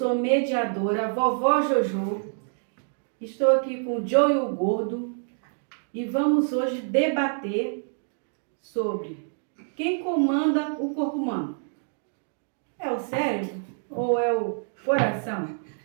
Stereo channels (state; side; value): silent; left; digital silence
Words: mediadora, vovó Jojo. Estou aqui com o Joe e o Gordo e vamos hoje debater sobre quem comanda o corpo humano. É o cérebro ou é o coração?